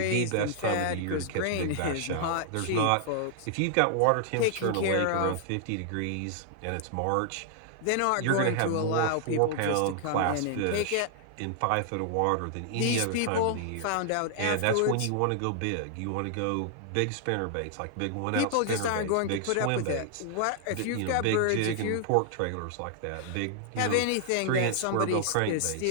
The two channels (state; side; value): different; both; correlation -0.01